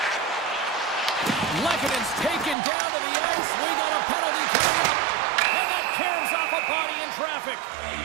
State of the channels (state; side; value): drops out; left; at 2.6 s